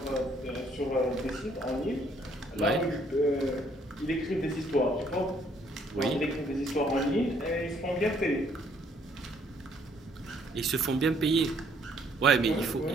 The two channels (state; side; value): normal; both; correlation 0.66